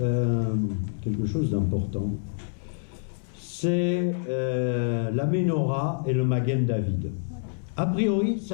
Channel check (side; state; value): right; silent; 59 dB below the other